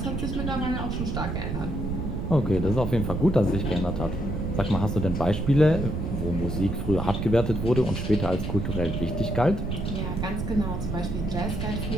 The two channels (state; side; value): noise; right; rumble, 2 dB below the sound